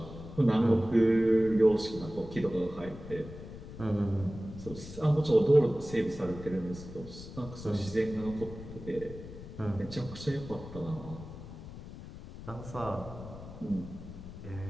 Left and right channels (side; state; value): left; noise; rumble, 13 dB below the sound